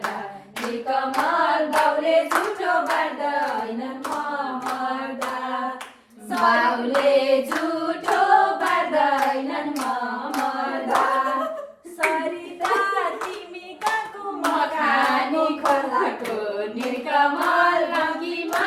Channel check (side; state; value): both; identical; correlation 1.00